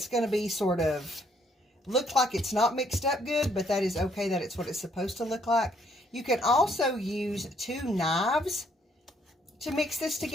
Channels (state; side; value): normal; both; correlation 0.68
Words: going to be sort of look like it's not mixed up good, but that is okay. That it's what it's supposed to look like. You can also use 2 knives to mix this